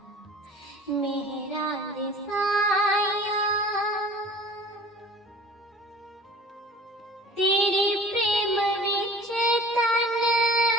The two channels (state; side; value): normal; both; correlation 0.47